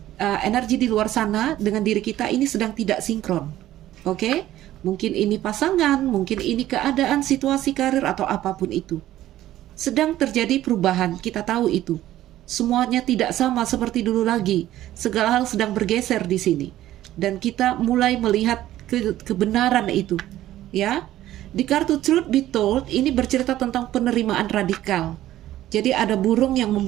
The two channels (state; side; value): quieter; left; 13.9 dB